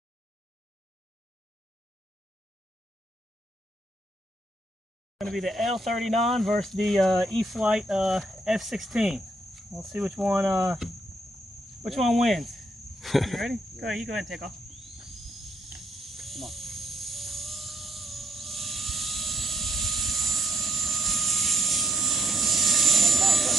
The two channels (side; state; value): both; normal; correlation 0.74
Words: Going to be the L-39 versus the E-Flite F-16. We'll see which one wins. You ready? Go ahead, you go ahead and take off. Come on.